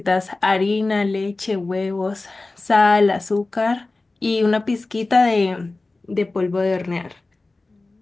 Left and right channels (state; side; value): quieter; right; 3.2 dB